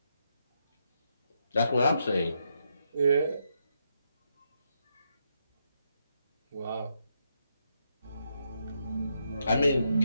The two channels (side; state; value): both; inverted; correlation -0.79